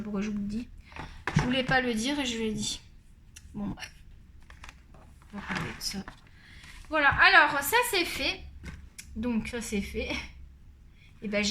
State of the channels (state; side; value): identical; both; correlation 1.00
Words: pourquoi je vous le dis. Je voulais pas le dire et je l'ai dit. Bon bref. On va parler de ça. Voilà, alors ça c'est fait. Donc ça c'est fait. Et ben